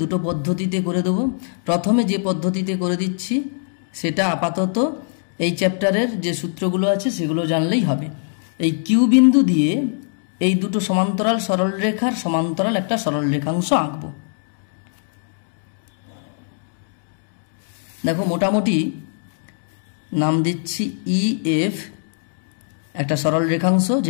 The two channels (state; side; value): silent; right; digital silence